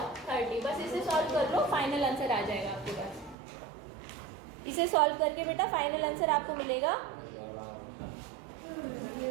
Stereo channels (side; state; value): left; drops out; at 3.4 s